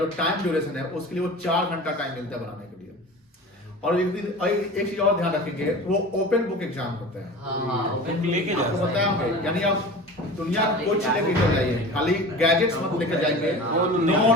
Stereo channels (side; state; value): both; normal; correlation 0.36